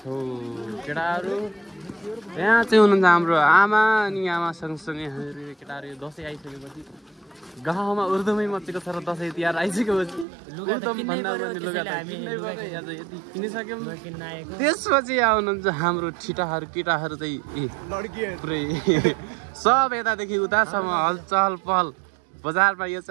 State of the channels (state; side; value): drops out; left; at 10.2 s